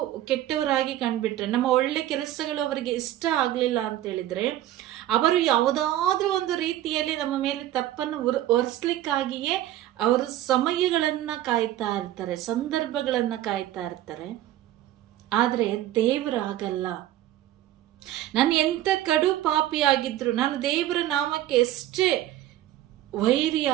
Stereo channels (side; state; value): left; quieter; 13.6 dB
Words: ಕೆಟ್ಟವರಾಗಿ ಕಂಡ್ಬಿಟ್ರೆ, ನಮ್ಮ ಒಳ್ಳೆ ಕೆಲಸಗಳು ಅವರಿಗೆ ಇಷ್ಟ ಆಗ್ಲಿಲ್ಲ ಅಂತ ಹೇಳಿದ್ರೆ, ಅವರು ಯಾವುದಾದ್ರೂ ಒಂದು ರೀತಿಯಲ್ಲಿ ನಮ್ಮ ಮೇಲೆ ತಪ್ಪನ್ನು ಹೊರಿಸ್ಲಿಕ್ಕಾಗಿಯೇ ಅವರು ಸಮಯಗಳನ್ನ ಕಾಯ್ತಾ ಇರ್ತಾರೆ, ಸಂದರ್ಭಗಳನ್ನ ಕಾಯ್ತಾ ಇರ್ತಾರೆ. ಆದ್ರೆ ದೇವರು ಆಗಲ್ಲ. ನಾನು ಎಂತ ಕಡು ಪಾಪಿಯಾಗಿದ್ರು, ನಾನು ದೇವರ ನಾಮಕ್ಕೆ ಎಷ್ಟೇ